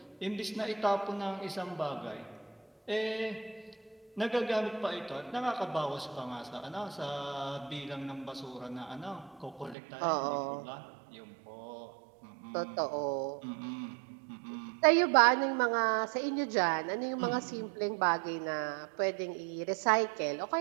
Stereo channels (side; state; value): left; drops out; at 9.8 s